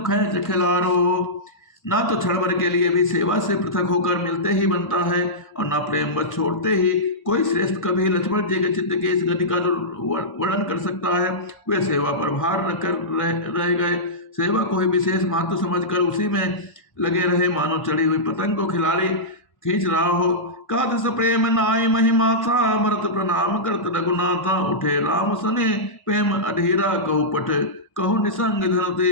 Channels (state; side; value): late; right; 1.0 ms